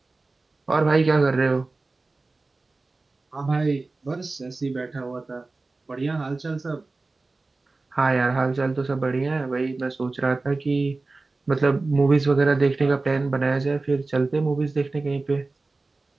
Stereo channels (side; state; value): left; quieter; 3.5 dB